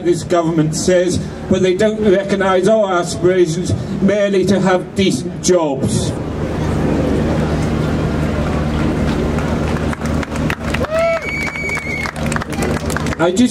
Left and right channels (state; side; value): identical; both; correlation 1.00